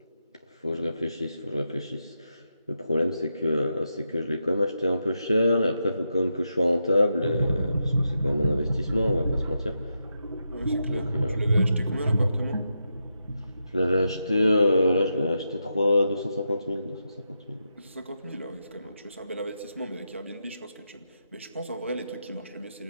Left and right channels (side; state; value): both; inverted; correlation -0.85